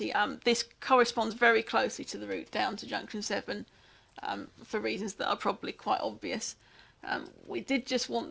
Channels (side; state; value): both; identical; correlation 1.00